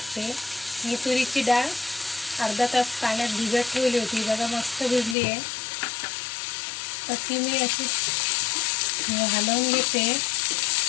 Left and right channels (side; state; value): right; drops out; at 5.2 s